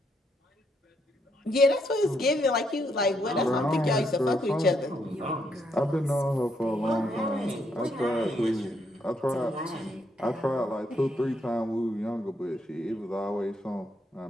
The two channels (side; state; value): both; normal; correlation 0.75